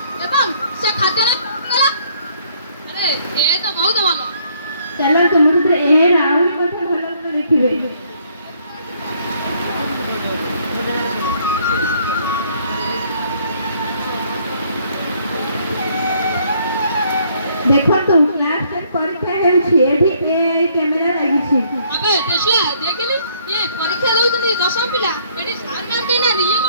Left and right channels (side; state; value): both; inverted; correlation -0.65